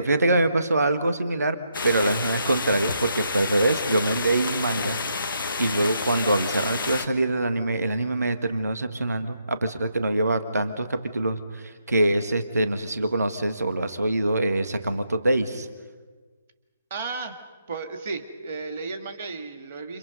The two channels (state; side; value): inverted; both; correlation -0.78